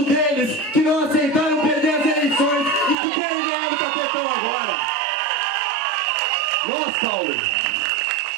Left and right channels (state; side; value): drops out; left; at 3.0 s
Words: deles que não aceitaram perder as eleições e que querem ganhar o tapetão agora.